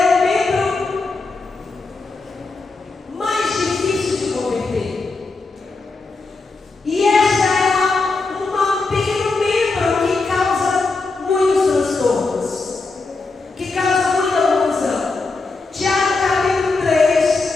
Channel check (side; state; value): right; quieter; 3.8 dB